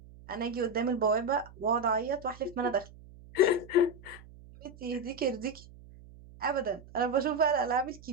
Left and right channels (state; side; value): noise; right; hum, 20 dB below the sound